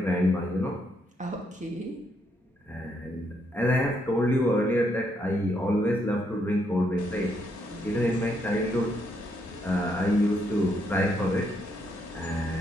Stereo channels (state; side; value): normal; both; correlation 0.75